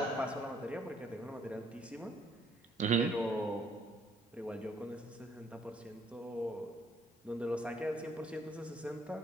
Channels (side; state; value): both; normal; correlation 0.66